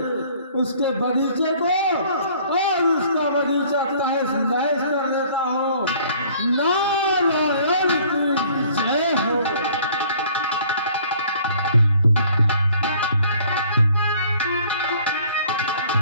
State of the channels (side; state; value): both; inverted; correlation -0.55